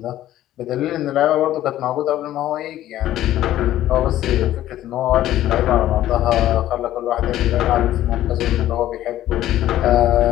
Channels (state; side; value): quieter; right; 13.4 dB